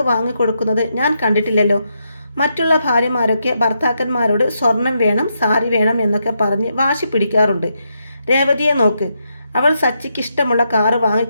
വാങ്ങിക്കൊടുക്കുന്നത് ഞാൻ കണ്ടിട്ടില്ലല്ലോ. മറ്റുള്ള ഭാര്യമാരൊക്കെ ഭർത്താക്കന്മാരോട് സ്വർണം വേണം, സാരി വേണം എന്നൊക്കെ പറഞ്ഞ് വാശി പിടിക്കാറുണ്ട്. രേവതിയെ നോക്ക്, അവൾ സച്ചിക്ക് ഇഷ്ടമുള്ള കാറ്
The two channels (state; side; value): inverted; both; correlation -0.81